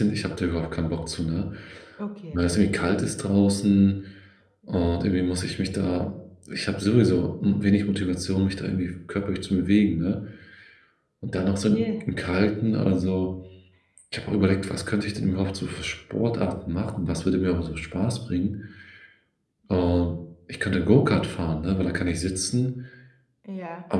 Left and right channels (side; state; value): both; identical; correlation 1.00